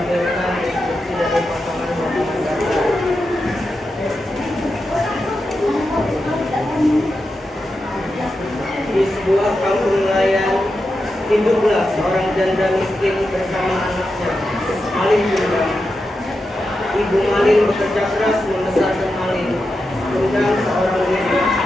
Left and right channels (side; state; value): both; normal; correlation 0.89